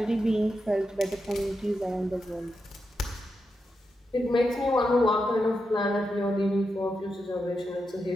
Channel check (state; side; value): normal; both; correlation 0.87